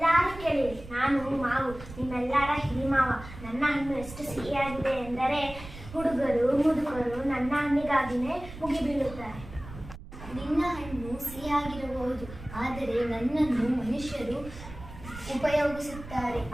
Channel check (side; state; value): right; noise; rumble, 14 dB below the sound